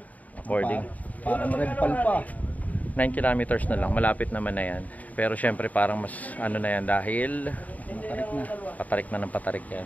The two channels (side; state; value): right; late; 0.073 ms